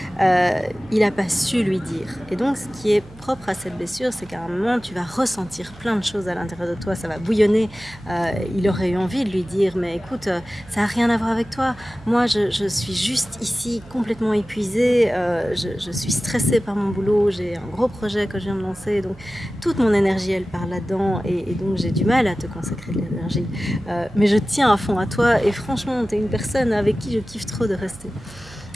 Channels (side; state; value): right; noise; hum, 21 dB below the sound